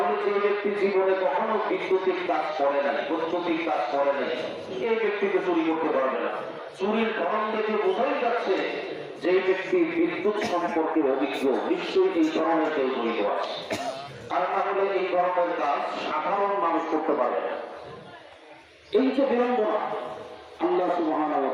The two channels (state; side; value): identical; both; correlation 1.00